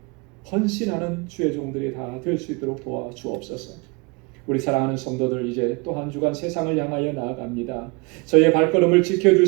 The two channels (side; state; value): left; quieter; 29.6 dB